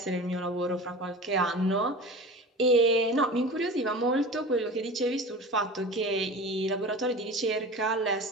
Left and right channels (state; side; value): normal; both; correlation 0.34